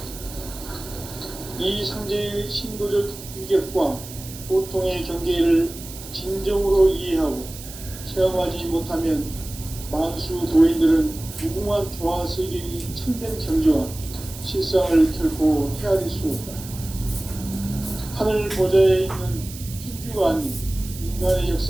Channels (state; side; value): noise; right; hiss, 14 dB below the sound